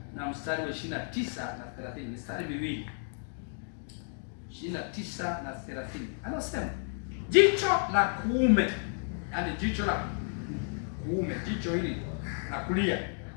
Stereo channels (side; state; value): right; silent; 56 dB below the other